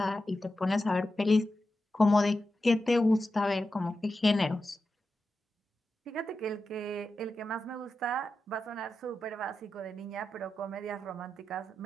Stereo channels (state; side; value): normal; both; correlation 0.90